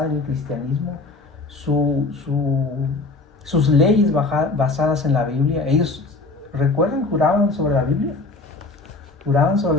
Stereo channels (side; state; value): right; quieter; 3.5 dB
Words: en el cristianismo, sus leyes basadas en la Biblia. Ellos, recuerden, juraban sobre la Biblia